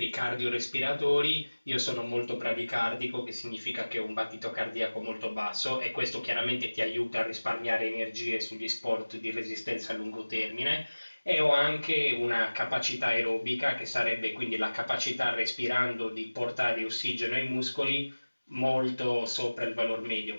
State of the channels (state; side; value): inverted; both; correlation -1.00